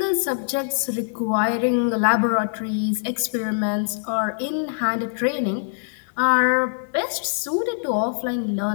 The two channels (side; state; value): right; silent; digital silence